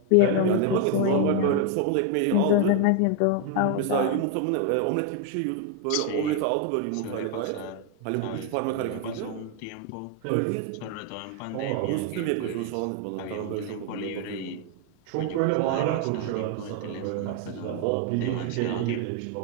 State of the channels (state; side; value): different; both; correlation 0.00